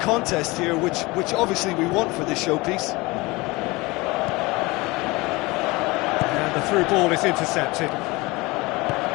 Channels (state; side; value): quieter; right; 23.2 dB